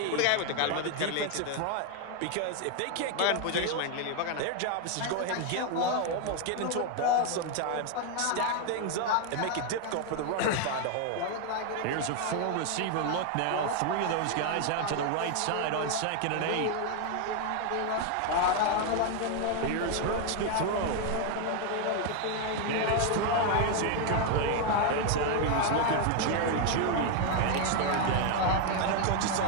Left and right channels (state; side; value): different; both; correlation 0.01